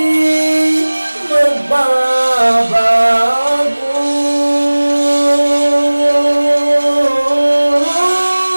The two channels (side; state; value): both; inverted; correlation -1.00